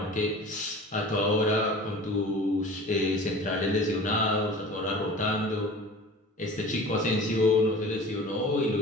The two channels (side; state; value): both; normal; correlation 0.40